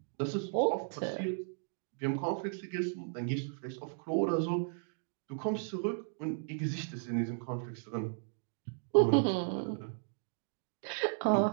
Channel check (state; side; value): silent; left; digital silence